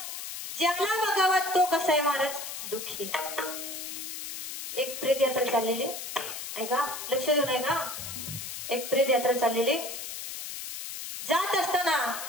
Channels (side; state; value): left; noise; hiss, 7 dB below the sound